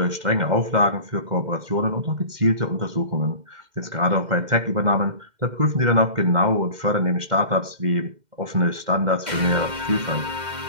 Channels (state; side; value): late; left; 2.1 ms